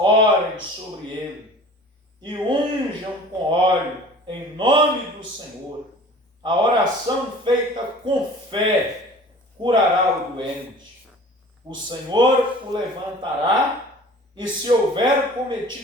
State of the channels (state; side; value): normal; both; correlation 0.44